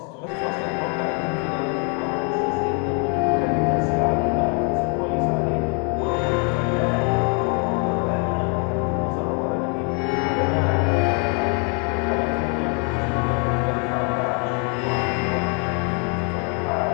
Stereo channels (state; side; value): quieter; right; 38.0 dB